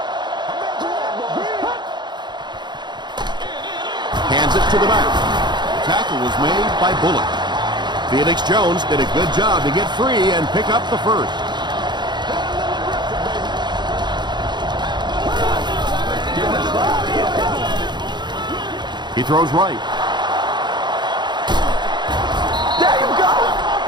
Hands it to the back. Tackle was made by Bullock. Felix Jones did a good job to get free and pick up the first. He throws right. There you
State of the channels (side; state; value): left; late; 0.21 ms